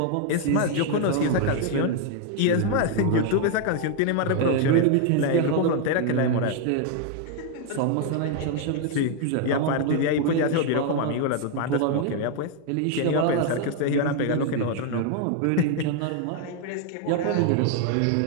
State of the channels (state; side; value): different; both; correlation 0.00